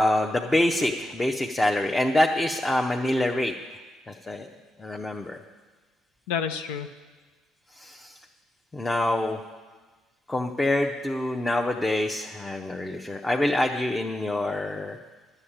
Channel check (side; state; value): both; normal; correlation 0.89